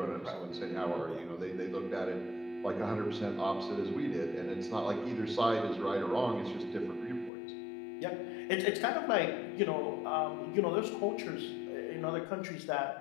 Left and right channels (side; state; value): right; drops out; at 7.3 s